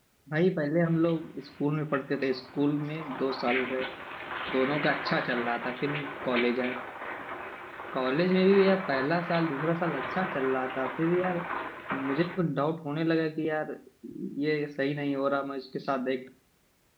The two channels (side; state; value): both; identical; correlation 1.00